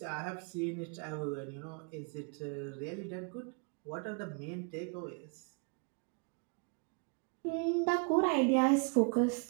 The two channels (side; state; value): left; quieter; 36.2 dB